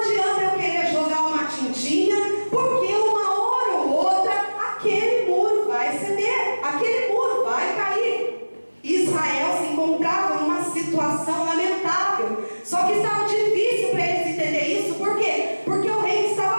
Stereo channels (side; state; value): both; inverted; correlation -1.00